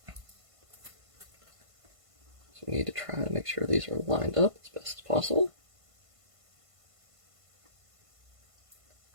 So we need to try to make sure these are lined up as best as possible.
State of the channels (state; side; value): late; left; 1.5 ms